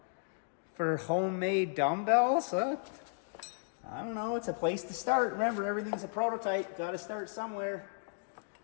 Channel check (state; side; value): silent; right; digital silence